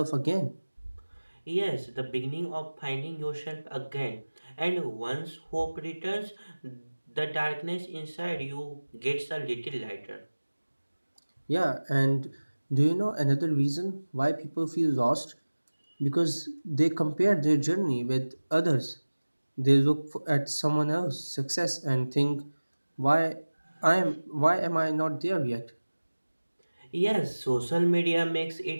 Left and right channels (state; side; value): inverted; both; correlation -1.00